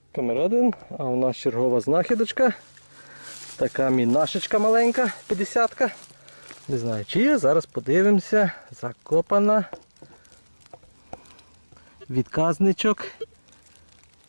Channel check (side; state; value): both; inverted; correlation -1.00